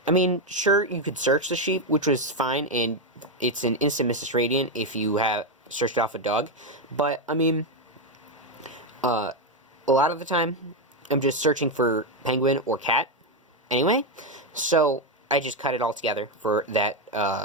I mean, sure, you could search the sheep, which was fine, and it's an instant Mrs. Radiant if you have searched off a dog. But, I mean, a lot of the time, I'm just searching for penguin or cat anyway. So, I just cut it all together for that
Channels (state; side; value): normal; both; correlation 0.06